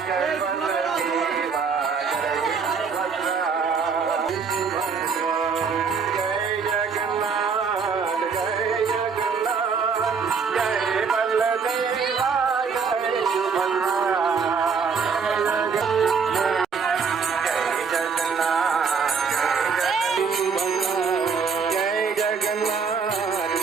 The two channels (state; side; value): quieter; left; 5.7 dB